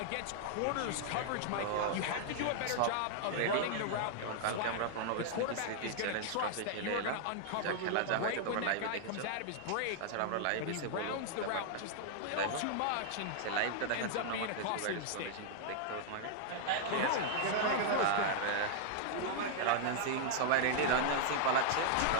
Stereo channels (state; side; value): different; both; correlation -0.01